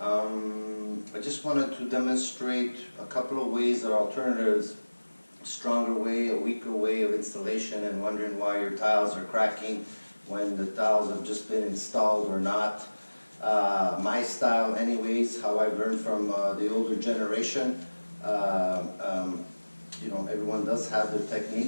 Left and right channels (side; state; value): both; inverted; correlation -1.00